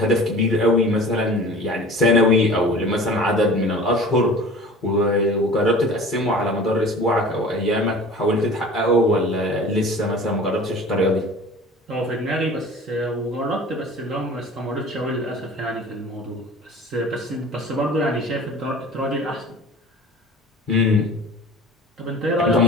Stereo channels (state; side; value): normal; both; correlation 0.41